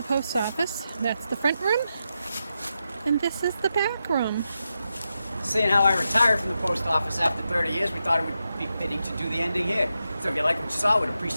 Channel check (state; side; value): inverted; both; correlation -0.87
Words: post office. That's the front room. And this is the back room. Seeing how I retired from the post office after 30 years, we thought it would be fitting to do the ending here. So if you like what you saw, we'd